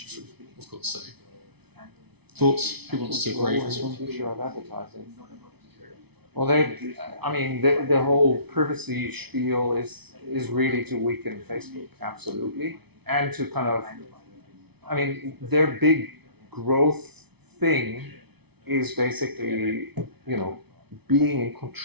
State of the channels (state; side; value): late; left; 0.99 ms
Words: of course. So, thoughts? Who wants to brave this one? The future of advertising. Well, the whole privacy spiel is really to weaken Facebook, absolutely, and to kind of, their big growth thing is basically, being in